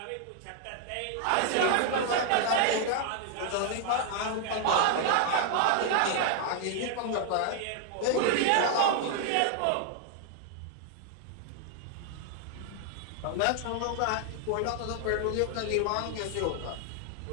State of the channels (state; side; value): different; both; correlation 0.00